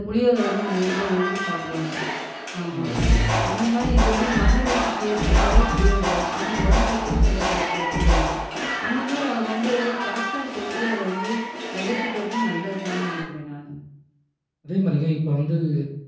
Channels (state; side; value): identical; both; correlation 1.00